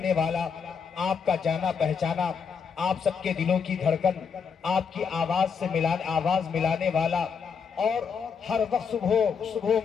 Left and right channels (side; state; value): right; quieter; 6.2 dB